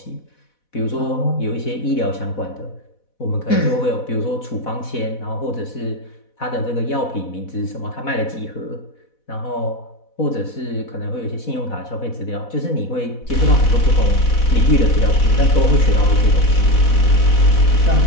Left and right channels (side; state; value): right; late; 4.1 ms